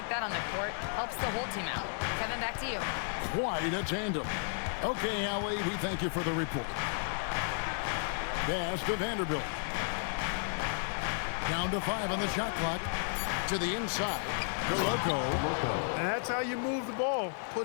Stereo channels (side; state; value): right; silent; digital silence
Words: that on the court helps the whole team out." Kevin, back to you. Quite a tandem. Okay, Allie, we thank you for the report. Pass to Vanderbilt. Down to 5 on the shot clock. To the inside. Loco. And that's how you move the ball,